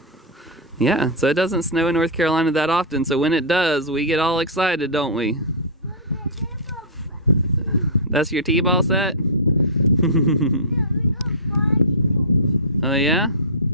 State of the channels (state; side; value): normal; both; correlation -0.14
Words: yeah, so it doesn't snow in North Carolina that often, so when it does, we get all excited, don't we? That's your T-ball set? Oh yeah?